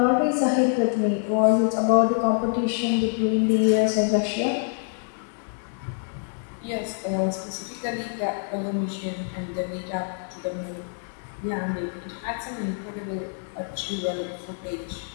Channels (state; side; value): silent; right; 61 dB below the other